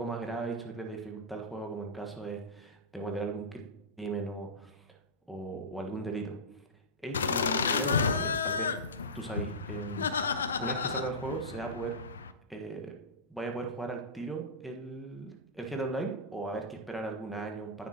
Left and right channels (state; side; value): normal; both; correlation -0.16